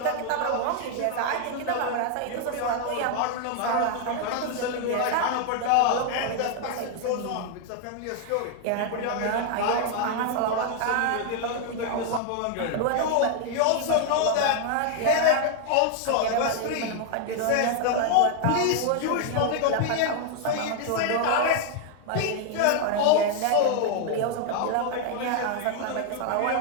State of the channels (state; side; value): different; both; correlation 0.00